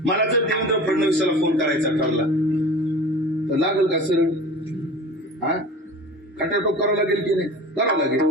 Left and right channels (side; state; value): both; normal; correlation 0.37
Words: मला जर देवेंद्र फडणवीसाला फोन करायचा ठरला तर लागेल का सरळ? हा, खटाटोप करावं लागेल की नाही? करावं लागेल.